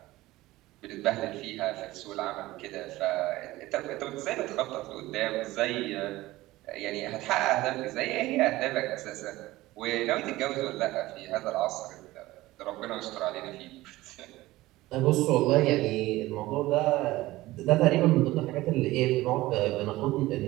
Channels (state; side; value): quieter; left; 17.9 dB